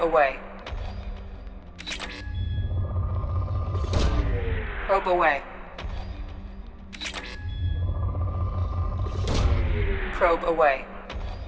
Probe away. Probe away.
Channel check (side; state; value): both; identical; correlation 1.00